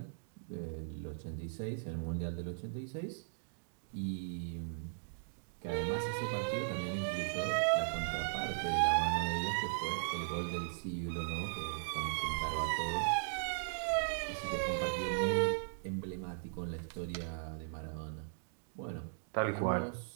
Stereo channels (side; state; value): left; silent; digital silence